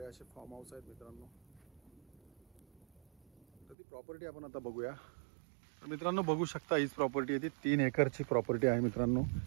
असे फार्म हाऊस आहेत मित्रांनो. तर ती प्रॉपर्टी आपण आता बघूया. तर मित्रांनो बघू शकता हीच प्रॉपर्टी आहे, ती 3 एकरची प्रॉपर्टी आहे मित्रांनो.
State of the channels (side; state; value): left; drops out; at 3.8 s